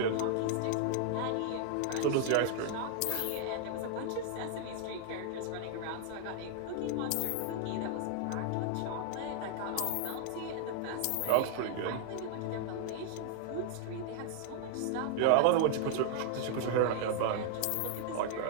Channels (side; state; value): both; different; correlation -0.01